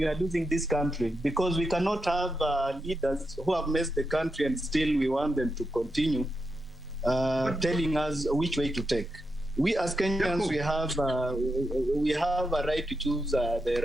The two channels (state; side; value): normal; both; correlation 0.86